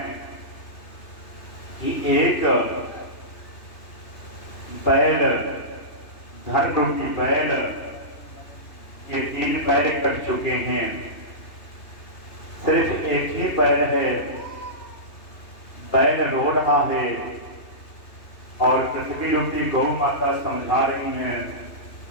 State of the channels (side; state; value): right; late; 3.0 ms